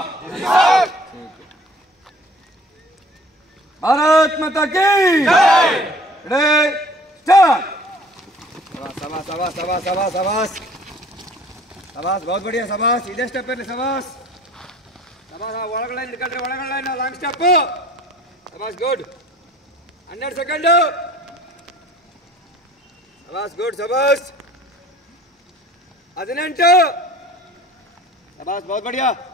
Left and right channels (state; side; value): normal; both; correlation 0.51